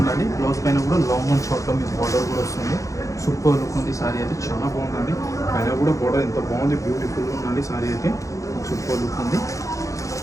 బ్లౌజ్ పైన కూడా లాంగ్ అండ్ షార్ట్లో మీకు బార్డర్ కూడా వస్తుంది. సూపర్ లుక్ ఉంది సారీ అయితే, చాలా బాగుందండి. పైన కూడా బార్డర్ ఎంత బాగుంది, బ్యూటిఫుల్గా ఉందండి సారీ అయితే. సూపర్ లుక్ ఉంది.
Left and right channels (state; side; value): late; right; 0.15 ms